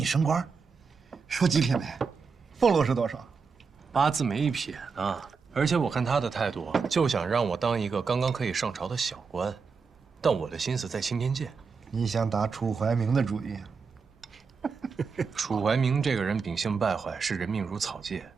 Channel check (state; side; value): quieter; left; 5.2 dB